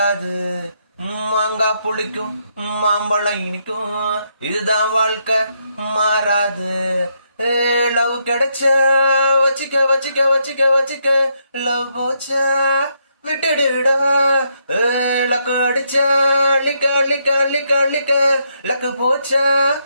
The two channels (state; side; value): inverted; both; correlation -0.77